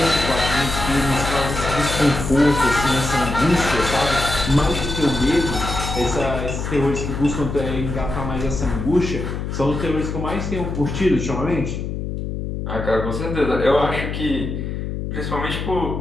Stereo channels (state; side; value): noise; left; hum, 4 dB below the sound